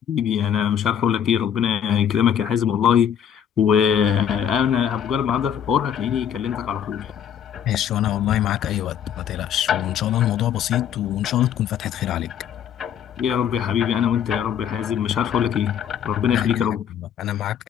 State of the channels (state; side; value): quieter; right; 9.0 dB